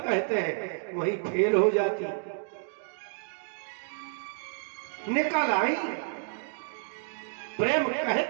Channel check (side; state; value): left; silent; 58 dB below the other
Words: कहते हैं, वही फेल हो जाती। निकल आई। प्रेम